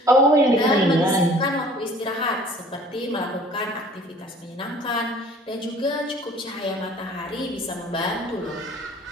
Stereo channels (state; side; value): normal; both; correlation 0.51